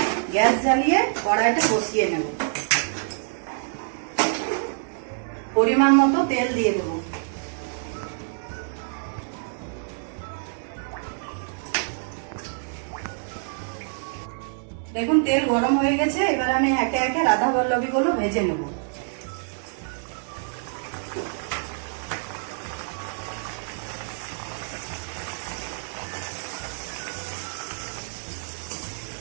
গ্যাস জ্বালিয়ে কড়াইটা বসিয়ে নেব। পরিমাণ মতো তেল দিয়ে দেব। দেখুন, তেল গরম হয়ে গেছে। এবার আমি একে একে রাধা বল্লভীগুলো ভেজে নেব।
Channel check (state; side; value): silent; left; digital silence